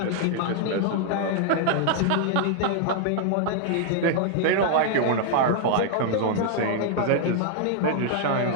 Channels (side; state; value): both; different; correlation 0.00